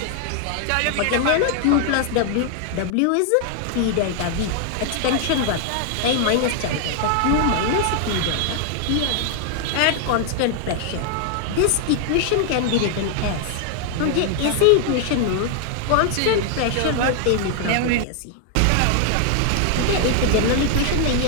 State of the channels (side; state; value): both; different; correlation 0.00